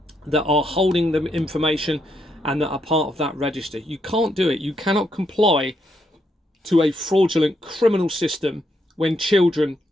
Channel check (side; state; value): both; normal; correlation 0.78